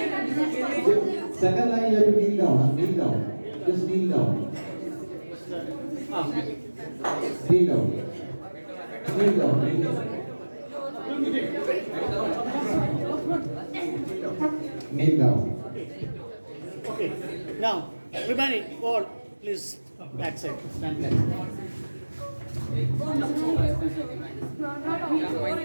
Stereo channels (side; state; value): both; inverted; correlation -1.00